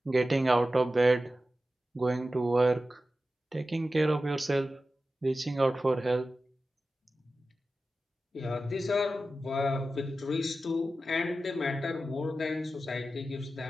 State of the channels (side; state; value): both; normal; correlation 0.93